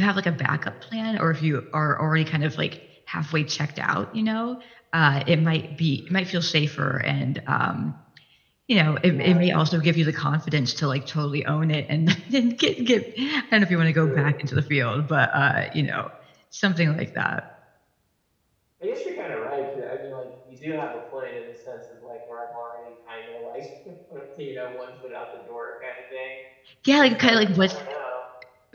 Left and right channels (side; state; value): both; identical; correlation 1.00